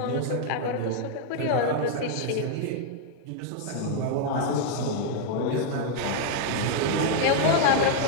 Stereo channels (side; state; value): both; different; correlation 0.00